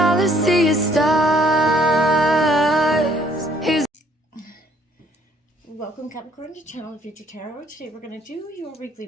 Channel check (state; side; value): normal; both; correlation 0.63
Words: I see is stars. Welcome Capricorn to Channel of Future Tarot. Today we're going to do your weekly